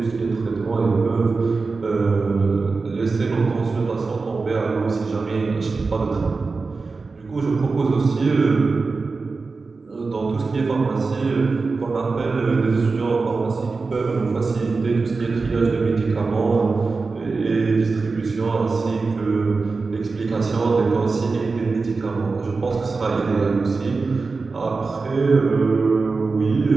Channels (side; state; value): left; quieter; 4.2 dB